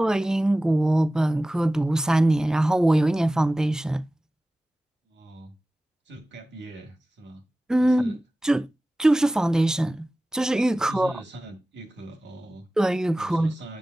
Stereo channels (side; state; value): both; normal; correlation 0.97